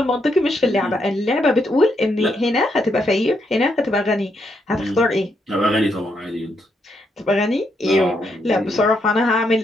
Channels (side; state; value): both; normal; correlation 0.78